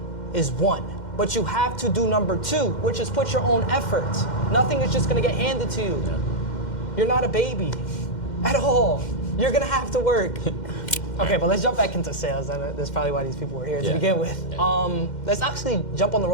is one. But you have to do number 2, which is put your own effort. Nothing is just gonna get handed to you. You're not a baby at all. You're gonna have to work. Okay, but let's jump back into sales. That's probably why these people were here to begin with. Let's actually jump on the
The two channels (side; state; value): right; late; 2.1 ms